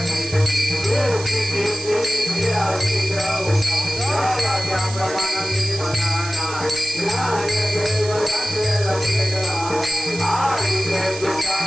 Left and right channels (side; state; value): right; noise; hiss, 11 dB below the sound